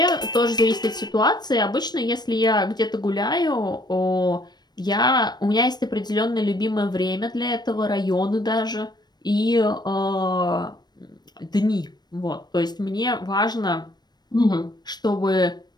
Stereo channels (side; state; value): right; late; 0.20 ms